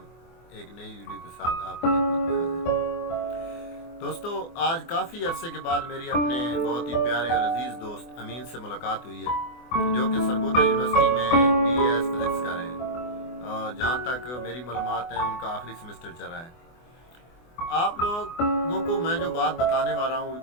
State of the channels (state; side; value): late; right; 24 ms